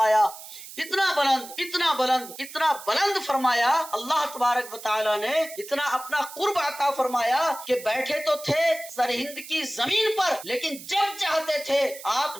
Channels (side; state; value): right; noise; hiss, 14 dB below the sound